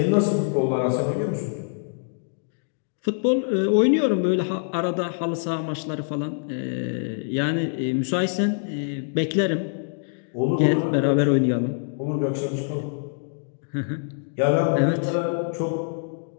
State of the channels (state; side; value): silent; right; digital silence